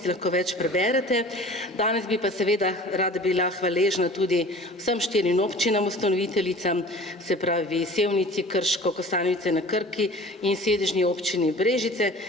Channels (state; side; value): normal; both; correlation 0.43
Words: lahko več preberete. Danes bi pa seveda rada bila hvaležna tudi vsem 4 občinam ustanoviteljicam, se pravi Sevnici, Krško, Kostanjevice na Krki in sedežni občini Brežice